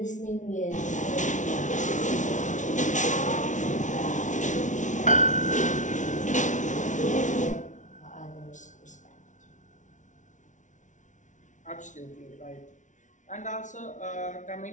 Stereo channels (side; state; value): right; late; 0.36 ms